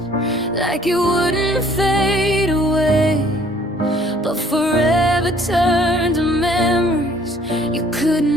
like it wouldn't fade away. But forever turned to memories you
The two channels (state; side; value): normal; both; correlation 0.58